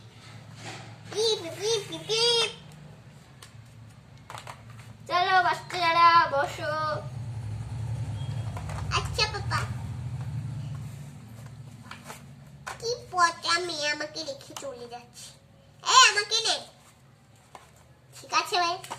চলো বাচ্চারা বসো। আচ্ছা পাপা। কি পচা মেয়ে আমাকে রেখে চলে যাচ্ছে। আমাকে নে, ঠিক আছে ভাই।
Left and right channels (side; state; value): both; identical; correlation 1.00